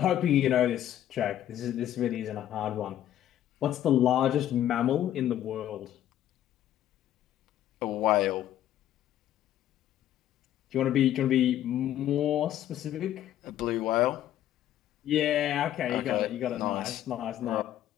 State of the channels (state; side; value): quieter; right; 11.9 dB